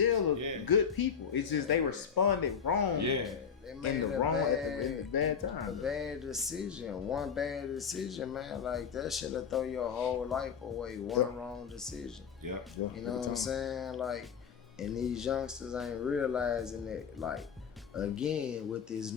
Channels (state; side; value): quieter; right; 6.9 dB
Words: are good people. It's just they responded wrong. Yeah. They made in the bad time. A bad decision. One bad decision, man. Like that should have thrown your whole life away. One wrong decision. Yeah. You know what I'm saying? Like, and these youngsters ain't realizing it. Like, again, with this